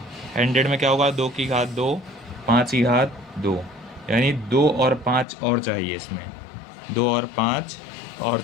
100 में क्या होगा? 2 की घात 2, 5 की घात 2, यानी 2 और 5 और चाहिए इसमें, 2 और 5 और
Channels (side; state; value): right; drops out; at 5.2 s